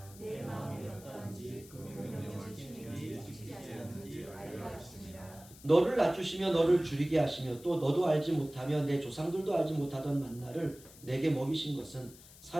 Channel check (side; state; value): left; noise; hiss, 20 dB below the sound